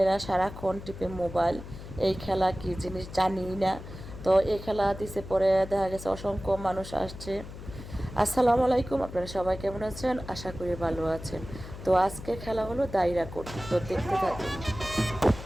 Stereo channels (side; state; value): left; noise; hum, 12 dB below the sound